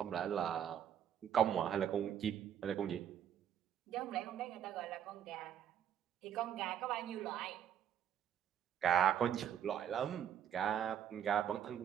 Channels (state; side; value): quieter; left; 9.4 dB